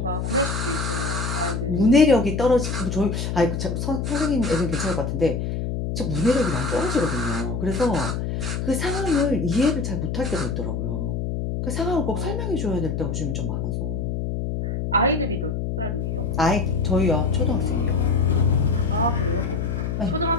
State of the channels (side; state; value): left; noise; hum, 2 dB below the sound